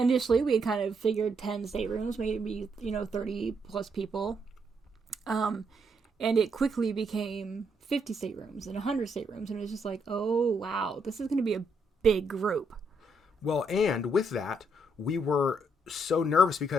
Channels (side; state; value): both; normal; correlation 0.75